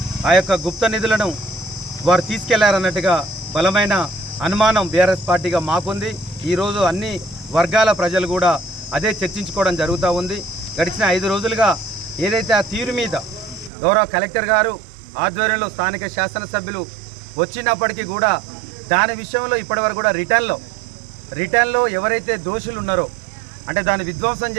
ఆ యొక్క గుప్త నిధులను వారు తీసుకెళ్లారన్నట్టుగా బలమైన అనుమానం బీఆర్ఎస్ పార్టీగా మాకుంది. ఈరోజు అన్ని వర్గాల ప్రజలు కూడా అదే చర్చించుకోవడం జరుగుతూ ఉంది. గడిచిన 5 రోజులుగా ఏదైతే ఆ తీరు మీద గౌరవ కలెక్టర్ గారు ఆధ్వర్యంలో స్థానిక శాసనసభ్యులు వచ్చినప్పటికీ కూడా దాని విషయంలో ఇప్పటివరకు కూడా రిటర్న్లో ఎవరైతే దోషులు ఉన్నారో అంటే దాన్ని విధ్వంసం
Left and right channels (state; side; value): drops out; left; at 13.7 s